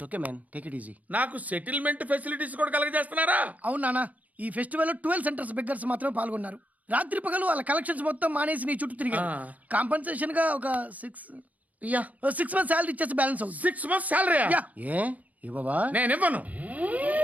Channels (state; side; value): late; left; 0.075 ms